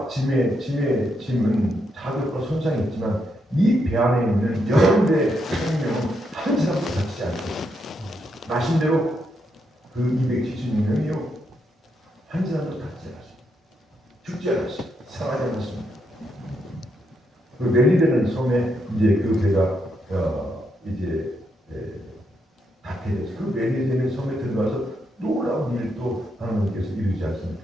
짐은 타격과 손상이 있지만 이 배 안에 있는 여러분의 생명은 한 사람도 다치지 않고 마신 대로 그 276명이요 한 사람도 다치지 않았어요. 죽지 않았어요. 상하지 않았습니다. 그 멜리데는 섬에 이제 그 배가 이제 닿게 돼서 그 멜리데는 섬에 들어가서 놀라운 일을 또 하나님께서 이루지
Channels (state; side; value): normal; both; correlation 0.80